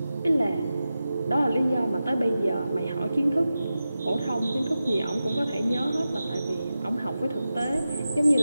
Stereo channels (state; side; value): inverted; both; correlation -0.93